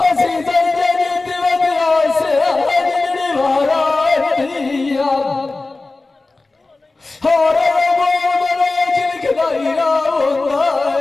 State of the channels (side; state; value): right; quieter; 3.4 dB